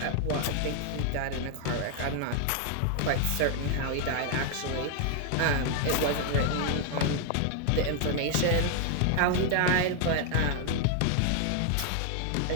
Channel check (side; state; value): both; different; correlation 0.00